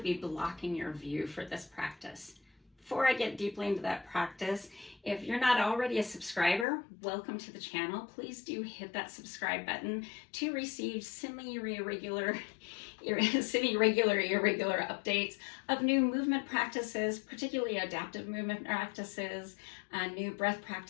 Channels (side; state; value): right; drops out; at 6.7 s